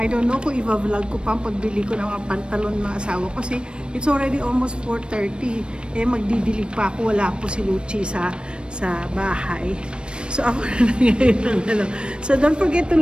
don't know kung i-vlog ko pa ang pagbili ko ng mga pantalon ng asawa ko. Kasi it's already almost 4:30. Magdidilig pa ako. Wala po si Luchi sa bahay. So, ako na ngayon. So, don't forget to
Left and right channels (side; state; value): left; late; 0.055 ms